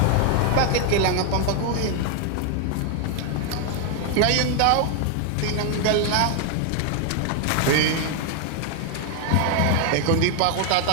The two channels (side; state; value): both; different; correlation 0.00